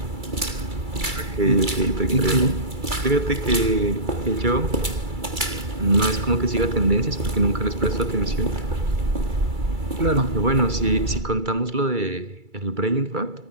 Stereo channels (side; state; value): left; late; 2.3 ms